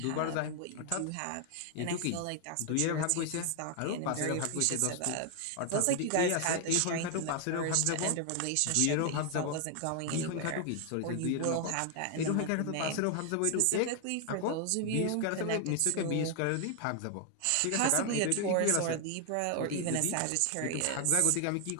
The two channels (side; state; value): both; different; correlation 0.00